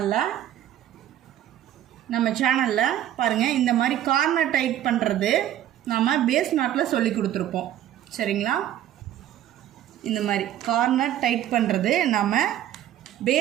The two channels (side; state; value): left; quieter; 11.9 dB